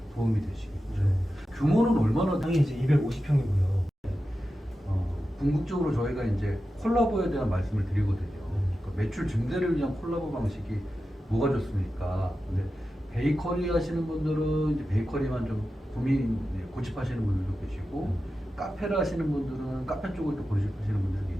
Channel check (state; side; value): normal; both; correlation 0.92